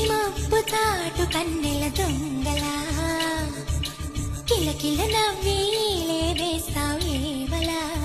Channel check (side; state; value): both; identical; correlation 1.00